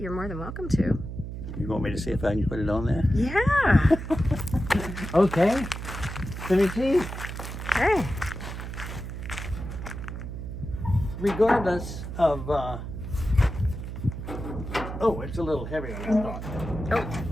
more than welcome to. You want me to see if I can put it on there? Yeah. Okay. Let me see. Hey. Regardless of, oh, it's a little heavier than I thought. Oh.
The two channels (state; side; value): noise; right; hum, 7 dB below the sound